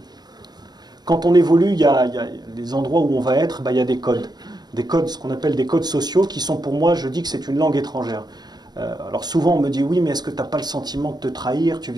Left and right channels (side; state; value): left; late; 0.20 ms